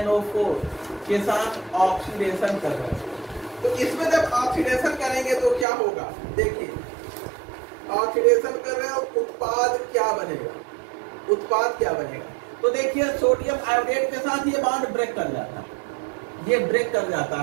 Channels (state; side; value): drops out; left; at 5.7 s